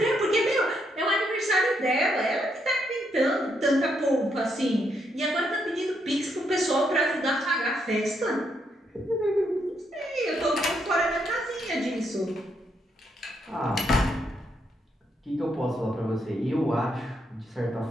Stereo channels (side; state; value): both; normal; correlation 0.77